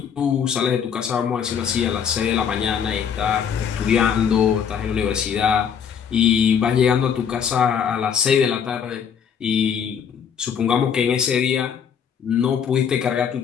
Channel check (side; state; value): right; quieter; 7.6 dB